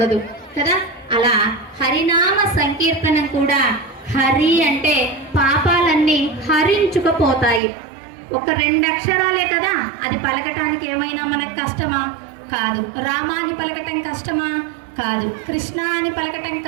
కదా. అలా హరినామ సంకీర్తనం కూడా, హరి అంటే పాపాలన్నీ హరించుకుపోతాయి. ఒక 2 అక్షరాలే కదా, అది పలకటానికి ఏమైనా మనకు కష్టమా? కాదు. రామ అని పలకటం కష్టమా? కాదు. కృష్ణ అని పలకటం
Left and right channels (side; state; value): left; drops out; at 7.6 s